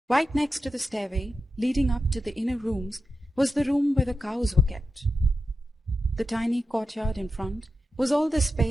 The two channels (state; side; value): normal; both; correlation 0.89